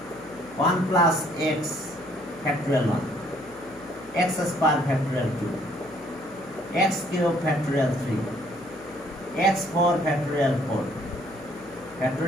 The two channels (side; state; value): left; noise; hum, 25 dB below the sound